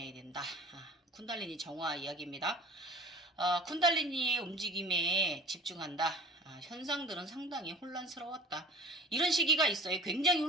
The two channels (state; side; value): normal; both; correlation 0.42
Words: 된다. 쿤달리니 정화 이야기입니다. 쿤달리니의 움직임에 집중한다. 현상들은 상당히 혼란스러웠다. 이런 시기가 있어요. 굉장히